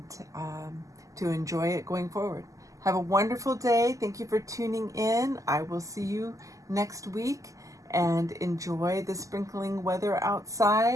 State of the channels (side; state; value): left; late; 0.16 ms